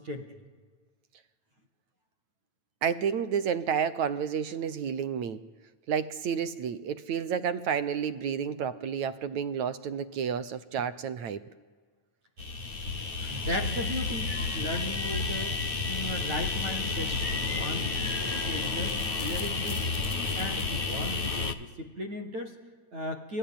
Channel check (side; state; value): left; late; 9.2 ms